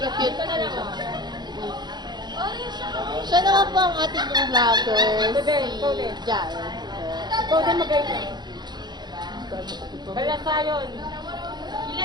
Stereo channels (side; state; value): left; late; 0.21 ms